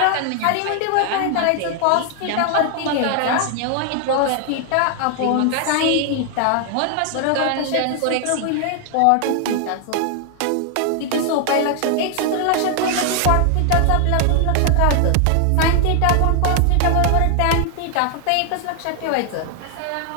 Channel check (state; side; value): different; both; correlation 0.00